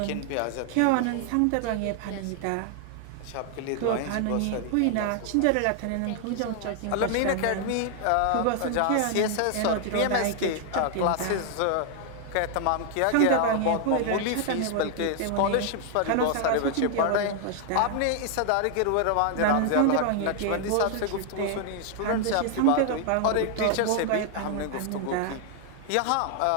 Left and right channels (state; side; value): different; both; correlation 0.00